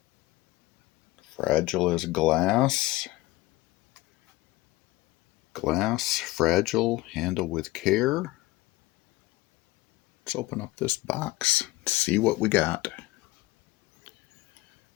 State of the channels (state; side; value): quieter; right; 19.0 dB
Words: Fragile as glass. Glass, fragile, handle with care. Let's open up this box, see what we got.